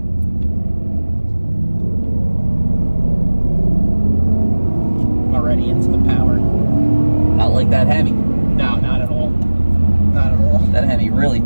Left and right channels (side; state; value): both; inverted; correlation -1.00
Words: Already into the power. Not like that Hemi. No, not at all. Not at all. That Hemi really